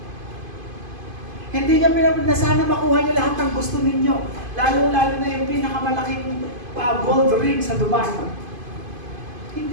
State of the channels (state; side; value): late; left; 2.5 ms